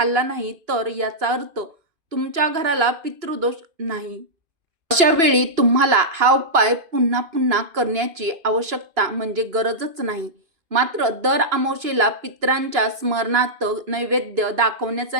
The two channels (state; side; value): late; left; 2.9 ms